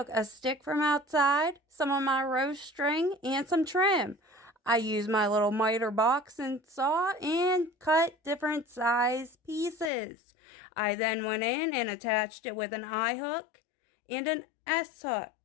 a stick from outside, some of my rose string, and some trim. I used my little miter box and saw and cut different size pieces. I then went in and attached it with an I hook and an S hook.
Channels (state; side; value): drops out; right; at 9.9 s